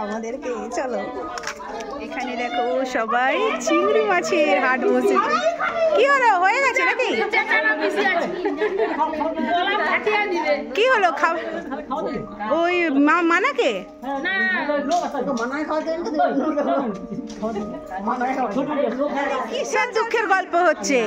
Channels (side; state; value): both; identical; correlation 1.00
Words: আমাদেরকে, চলো। এখানে দেখো সবাই চিংড়ি মাছের হাট বসেছে। কি হলো, হয়ে গেছে নাকি? কি হলো, খাওয়া ওই মানাকে কিসের দুঃখের গল্প হচ্ছে?